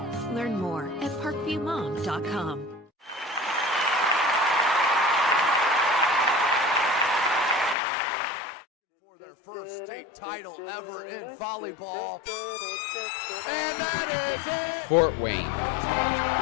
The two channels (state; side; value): drops out; right; at 7.8 s